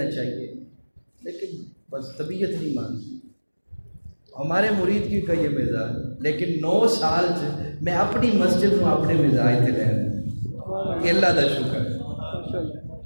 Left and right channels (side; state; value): both; inverted; correlation -1.00